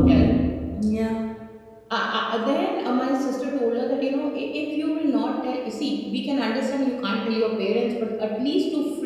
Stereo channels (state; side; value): identical; both; correlation 1.00